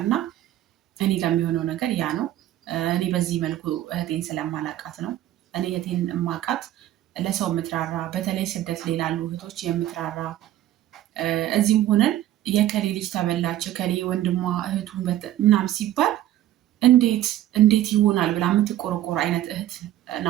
እና እኔ ጋር የሚሆነው ነገር ያ ነው። እኔ በዚህ መልኩ እህቴን ስለማላቃት ነው። እኔ እህቴን እማቃት ለሰው የምትራራ በተለይ ስደት ላይ ላሉ እህቶች የምትራራ እዚህም ሆነን የከሌ ልጅ ተበላች ከሌ ወንድሟ እህቱን ምናምን ሲባል እንዴት ይሆናል ብላ የምትቆረቆር አይነት እህት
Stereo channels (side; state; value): left; quieter; 13.2 dB